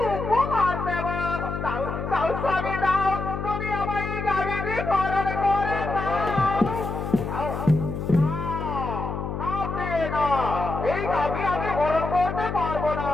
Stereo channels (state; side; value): noise; left; hum, 4 dB below the sound